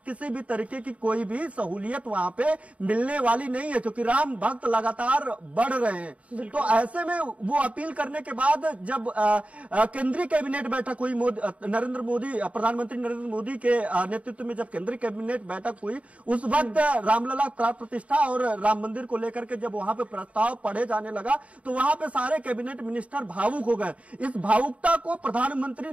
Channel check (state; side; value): late; left; 0.066 ms